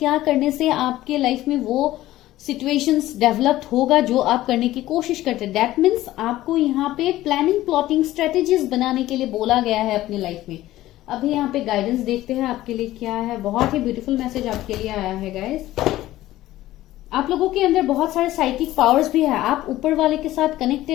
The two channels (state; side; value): quieter; right; 15.4 dB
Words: करने से आपके लाइफ में वो सिचुएशंस डेवलप्ड होगा जो आप करने की कोशिश करते हैं। दैट मीन्स आपको यहाँ पे प्लानिंग, प्लॉटिंग, स्ट्रेटेजीज बनाने के लिए बोला गया है अपनी लाइफ में। अभी यहाँ पे गाइडेंस देखते हैं आपके लिए क्या है। बहुत ही ब्यूटीफुल मैसेज आपके लिए आया है गाइस। आप लोगों के अंदर बहुत सारे साइकिक पावर्स भी है, आप ऊपर वाले के साथ